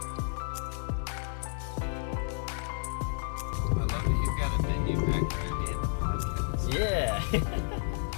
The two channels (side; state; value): right; silent; digital silence